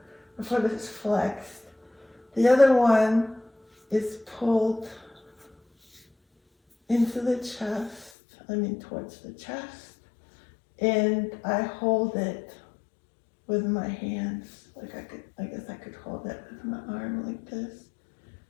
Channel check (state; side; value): drops out; right; at 8.1 s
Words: the foot is flexed. The other one is pulled into the chest, towards the chest, and I hold it with my hands. I guess I could hold it with my arm like this.